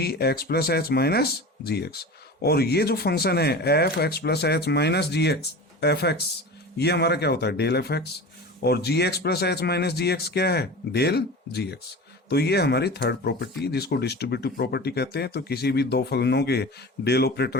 x plus h minus g x. और ये जो फंक्शन है f x plus h minus g x f x, ये हमारा क्या होता है, डेल एफ एक्स। और g x plus h minus g x क्या है, डेल जी एक्स। तो ये हमारी थर्ड प्रॉपर्टी जिसको डिस्ट्रीब्यूटिव प्रॉपर्टी कहते हैं। तो किसी भी दो फलनों के डेल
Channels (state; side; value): normal; both; correlation 0.33